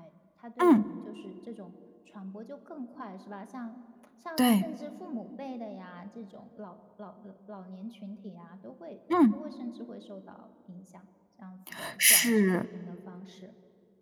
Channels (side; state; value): both; identical; correlation 1.00